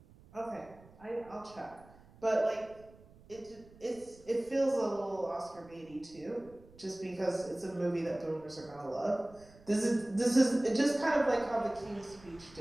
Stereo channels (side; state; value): right; noise; rumble, 24 dB below the sound